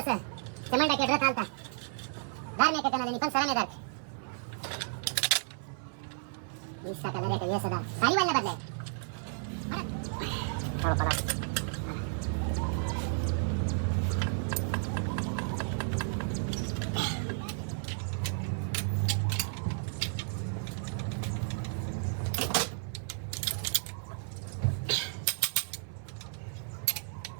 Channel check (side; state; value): left; silent; 56 dB below the other